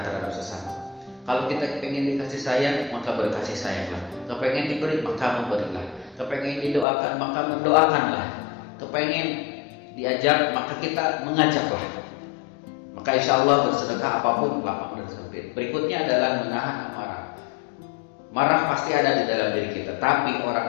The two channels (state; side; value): drops out; right; at 6.9 s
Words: terhadap sesama. Kalau kita pengen dikasih sayang, maka berkasih sayanglah. Kepengen diberi, maka memberilah. Kepengen didoakan, maka mendoakanlah. Kepengen diajak, maka kita mengajaklah. Maka insya Allah bersedekah apapun lapang dan sempit. Berikutnya adalah menahan amarah. Marah pasti ada di dalam diri kita, tapi